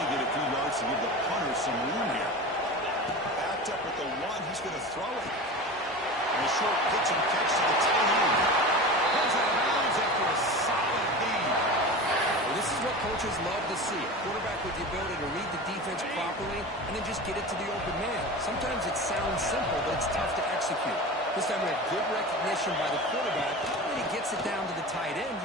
get a few yards to give the punter some room here. Backed up at the one, he's going to throw it. And a short pitch and catch to the tight end. Goes out of bounds after a solid gain. Well, this is what coaches love to see. A quarterback with the ability to read the defense properly and then just get it to the open man. Sometimes it sounds simple, but it's tough to execute. This time we had good recognition by the quarterback, and he gets it down to the tight end.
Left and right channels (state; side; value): normal; both; correlation 0.31